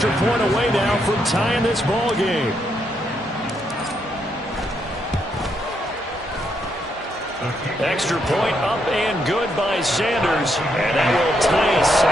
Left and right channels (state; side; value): normal; both; correlation 0.78